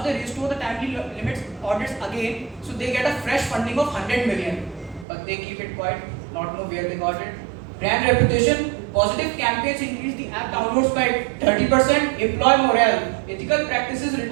they restore the timely limits audits again, so they get a fresh funding of 100 million, but they keep it quiet, not know where they got it. Brand reputation, positive campaigns increase the app downloads by 30%, employee morale, ethical practices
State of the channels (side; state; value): left; drops out; at 5.1 s